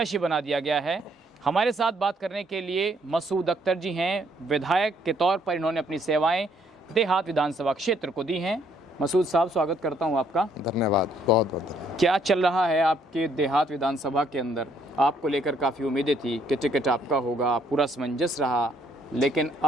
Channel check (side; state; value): both; normal; correlation 0.67